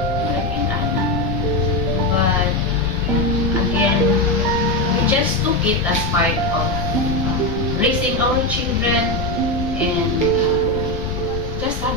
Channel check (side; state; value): left; noise; rumble, 8 dB below the sound